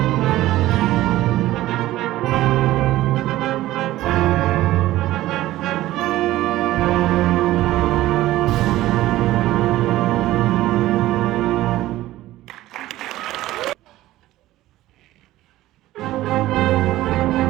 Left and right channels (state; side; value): quieter; left; 15.8 dB